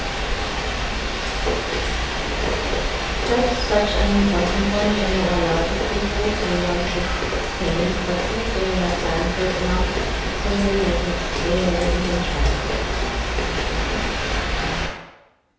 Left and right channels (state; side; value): identical; both; correlation 1.00